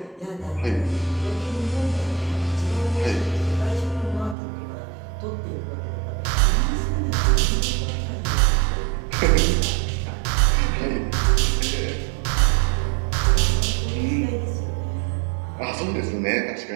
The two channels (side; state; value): left; drops out; at 4.4 s